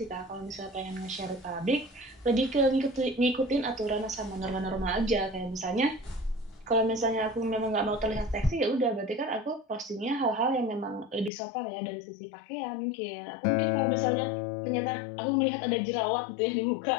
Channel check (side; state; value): right; drops out; at 11.3 s